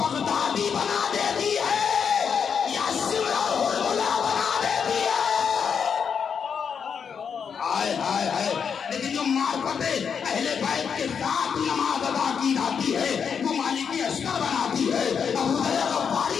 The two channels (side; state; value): right; quieter; 6.8 dB